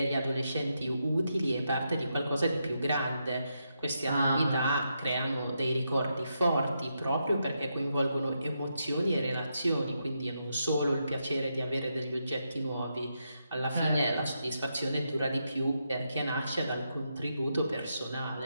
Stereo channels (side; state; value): both; inverted; correlation -0.83